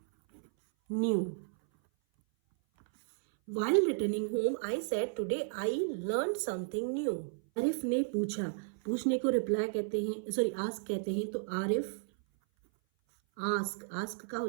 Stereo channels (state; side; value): silent; left; 56 dB below the other